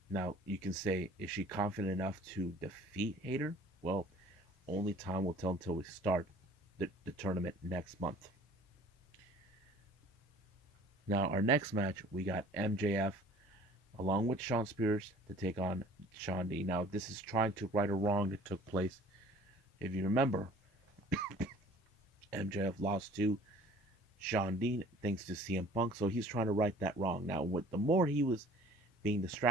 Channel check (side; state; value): both; normal; correlation 0.50